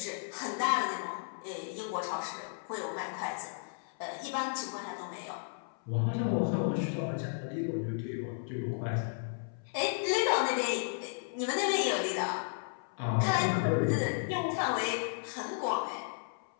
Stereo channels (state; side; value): silent; right; 55 dB below the other